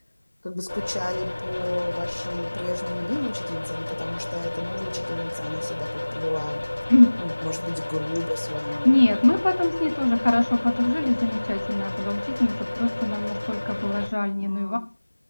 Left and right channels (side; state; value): both; inverted; correlation -1.00